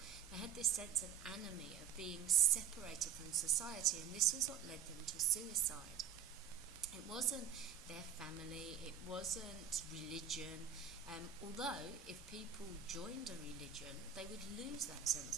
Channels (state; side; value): quieter; left; 8.1 dB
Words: They had this sense of anomie, of being separated from society, and this was what led them to suicide. It wasn't their family, it wasn't religion, although if people joined a religion, they would lose that